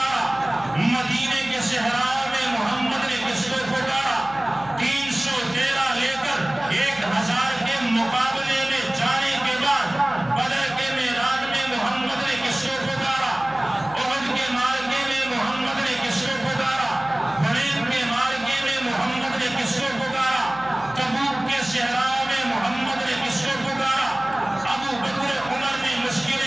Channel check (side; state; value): right; noise; hum, 22 dB below the sound